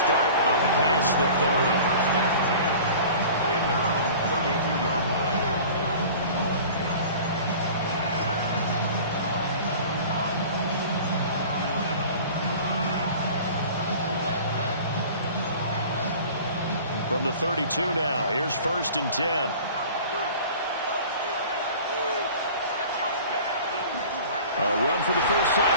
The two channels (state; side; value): inverted; both; correlation -0.42